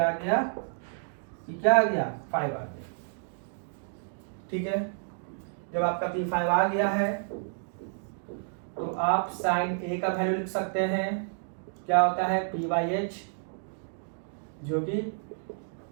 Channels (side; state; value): left; silent; digital silence